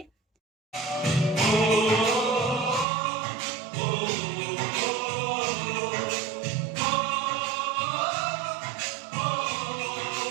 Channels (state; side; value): drops out; left; at 2.9 s